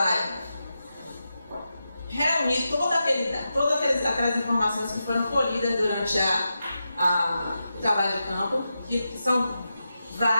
reunir todas aquelas informações que foram colhidas durante o trabalho de campo, que são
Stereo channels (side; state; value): both; inverted; correlation -0.89